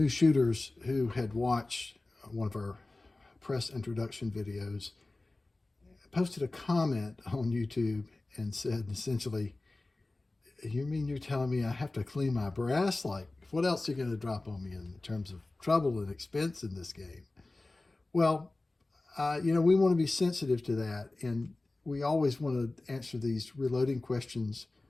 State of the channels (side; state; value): right; quieter; 3.0 dB